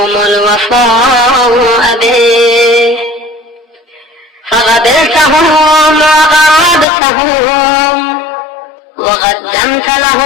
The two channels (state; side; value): drops out; right; at 6.9 s